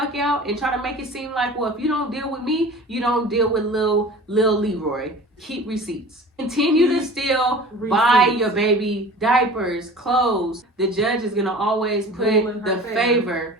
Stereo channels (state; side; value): normal; both; correlation 0.41